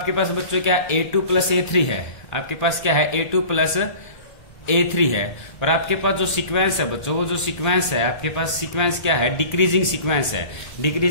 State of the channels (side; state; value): right; late; 1.4 ms